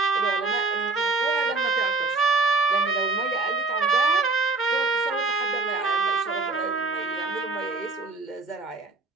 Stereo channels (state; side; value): quieter; left; 3.6 dB